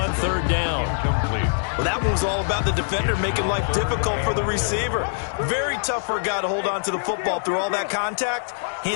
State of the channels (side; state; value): right; silent; digital silence